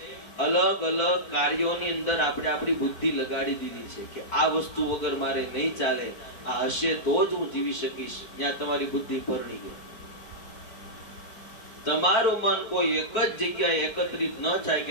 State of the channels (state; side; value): late; right; 4.5 ms